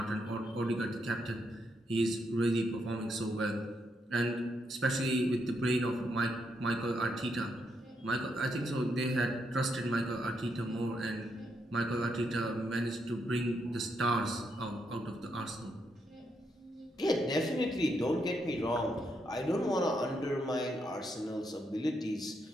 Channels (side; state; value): both; normal; correlation 0.79